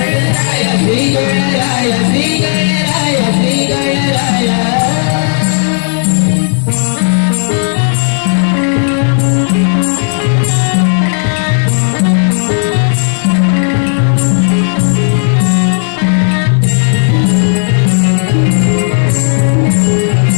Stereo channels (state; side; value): silent; right; 60 dB below the other